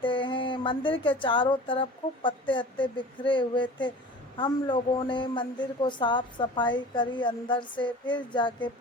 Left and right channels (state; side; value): normal; both; correlation 0.40